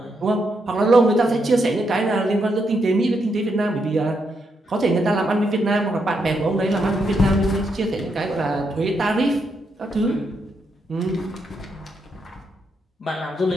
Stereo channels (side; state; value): both; normal; correlation 0.80